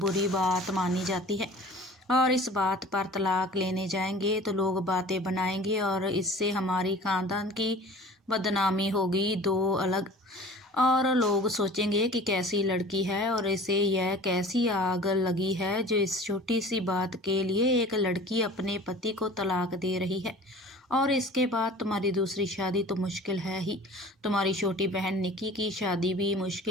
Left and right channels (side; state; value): both; normal; correlation 0.43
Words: बात मानी जाती है। और इस बात पर तलाक लेने जाएंगे तो लोग बातें बनाएंगे और इससे हमारी खानदान की बदनामी होगी। दो अलग और लोग सोचेंगे कि कैसी लड़की है और इसे यह कैसी आग लगी है जो इस छोटी सी बात के लिए एक लड़की अपने पति को तलाक दे रही है। और इसके बाद तुम्हारी दूसरी शादी तो मुश्किल है ही, तुम्हारी छोटी बहन निकी की शादी भी